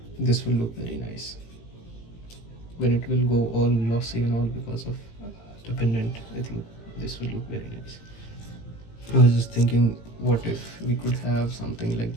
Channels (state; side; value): late; right; 18 ms